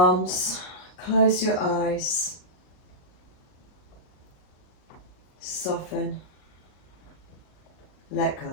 close your eyes, soften, let go.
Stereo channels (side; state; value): right; late; 38 ms